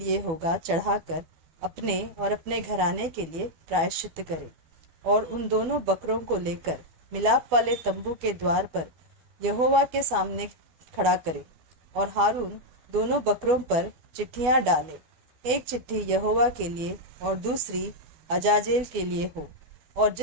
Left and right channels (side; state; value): left; late; 12 ms